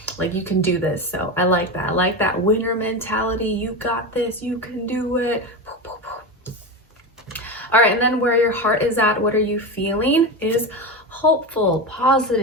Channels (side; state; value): both; normal; correlation 0.19